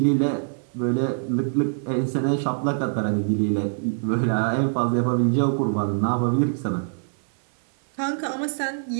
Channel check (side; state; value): left; silent; digital silence